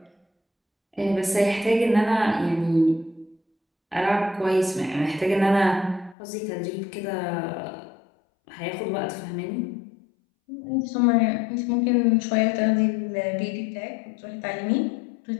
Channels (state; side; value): drops out; right; at 6.2 s